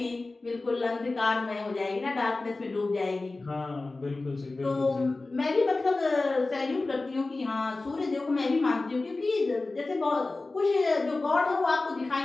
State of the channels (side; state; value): right; quieter; 3.3 dB